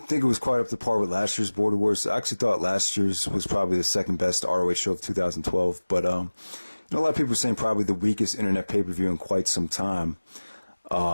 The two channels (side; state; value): both; inverted; correlation -1.00